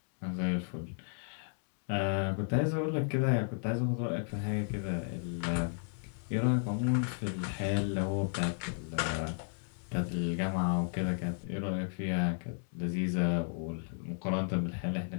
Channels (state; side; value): silent; right; digital silence